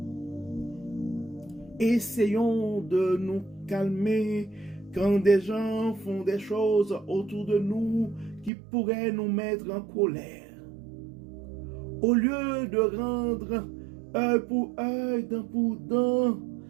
Essayons de nous calmer quand des gens font des choses autour de nous qui pourraient nous mettre en colère. Au lieu de rendre œil pour œil, dent pour dent,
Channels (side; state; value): left; drops out; at 8.5 s